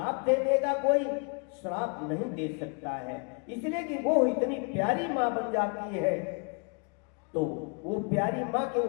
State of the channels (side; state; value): right; quieter; 35.9 dB